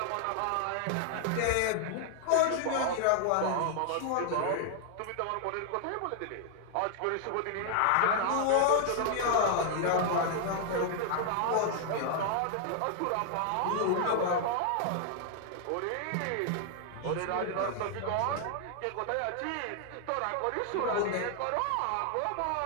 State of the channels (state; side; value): different; both; correlation 0.00